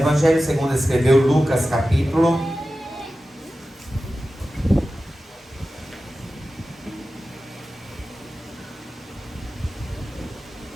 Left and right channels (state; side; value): normal; both; correlation 0.94